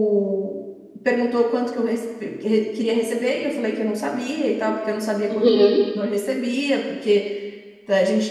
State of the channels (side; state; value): both; identical; correlation 1.00